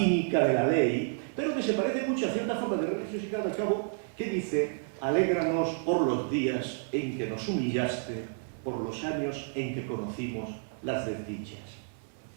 de la ley, pero que se parece mucho a cierta forma de religiosidad, al cabo, que dice: alégranos por los días en que nos humillaste, por los años en que conocimos las desdichas.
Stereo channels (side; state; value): left; silent; 57 dB below the other